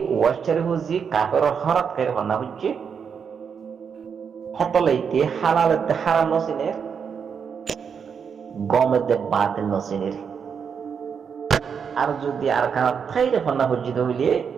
ওয়াইচারি বুঝি কাপের হরাত করে হনা হচ্ছে হেতলাইতে হালালেতে হারাম নসিনের গমেতে বাতের নসিনের আর যদি আর কানা থাইরে হন্না হজ্জিত হইলে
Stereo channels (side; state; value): left; quieter; 6.7 dB